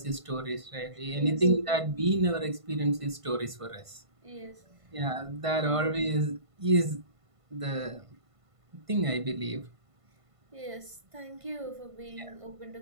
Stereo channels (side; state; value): left; late; 1.5 ms